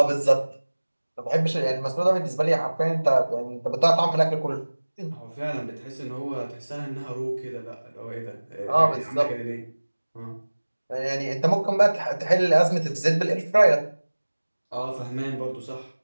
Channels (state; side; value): inverted; both; correlation -1.00